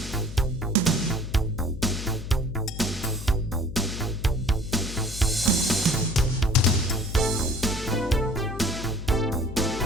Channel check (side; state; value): left; noise; hum, 8 dB below the sound